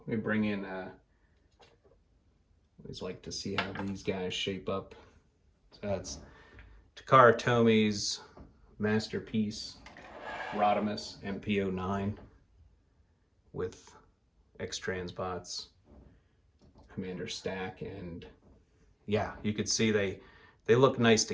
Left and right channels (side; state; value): both; identical; correlation 1.00